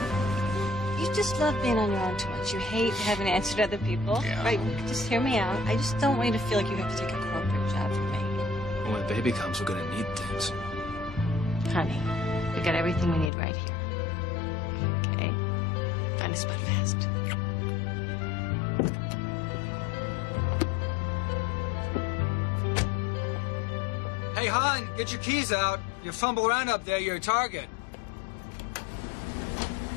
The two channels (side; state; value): right; drops out; at 13.3 s